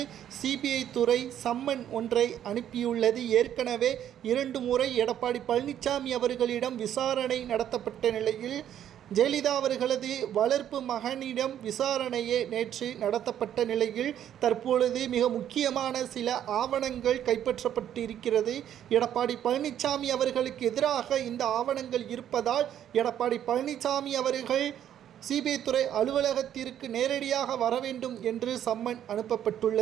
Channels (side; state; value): left; quieter; 10.5 dB